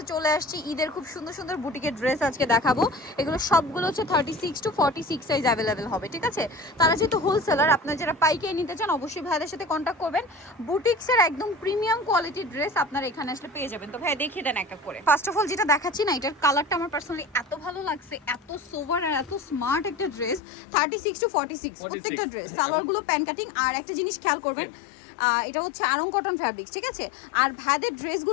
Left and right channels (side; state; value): right; drops out; at 20.4 s